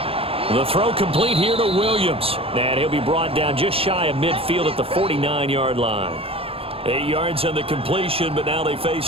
The throw complete here to Williams. And he'll be brought down just shy of midfield at the 49-yard line. 8 yards on the completion, but now they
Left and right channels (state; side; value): late; left; 0.27 ms